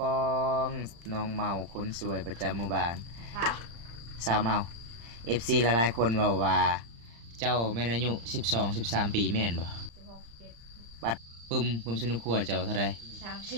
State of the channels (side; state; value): left; late; 35 ms